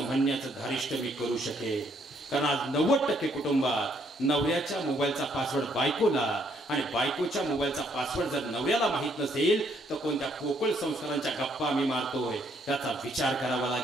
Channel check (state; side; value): normal; both; correlation 0.69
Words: म्हणण्याचं धारिष्ट मी करू शकेल. कारण आज 90% कुटुंबात नवऱ्याच्या मोबाईलचा पासवर्ड बायकोला आणि बायकोच्या मोबाईलचा पासवर्ड जर नवऱ्याला माहित नसेल तर कोणत्या पोकळ संस्कारांच्या गप्पा आम्ही मारतोय याचा विचार करावा